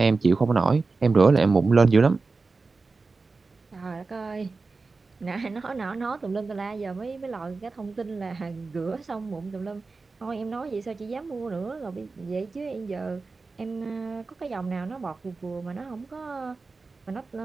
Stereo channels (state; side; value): quieter; left; 4.0 dB